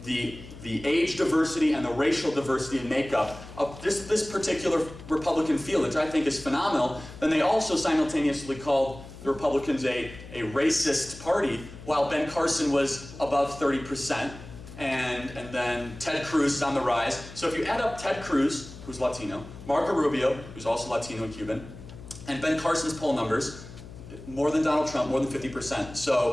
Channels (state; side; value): noise; left; hum, 15 dB below the sound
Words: the age diversity and the racial diversity and makeup of this particular Republican field, which I think is phenomenal. Then they also simultaneously called the Republicans a racist party, while Ben Carson was above 30%, and then Ted Cruz is on the rise. So if you add up Ted Cruz, who's Latino, Marco Rubio, who's also Latino and Cuban, and Ben Carson's poll numbers, more than Donald Trump, more than 50%.